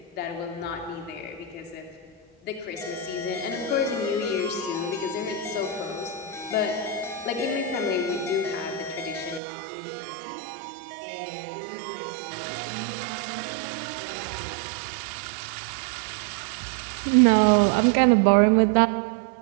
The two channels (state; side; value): drops out; left; at 9.4 s